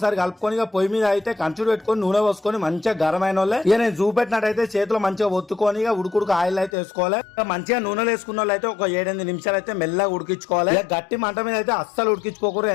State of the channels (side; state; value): right; drops out; at 6.7 s